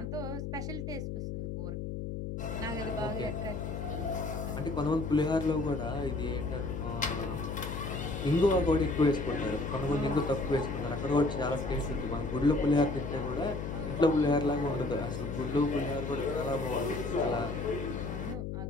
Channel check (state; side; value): noise; left; hum, 5 dB below the sound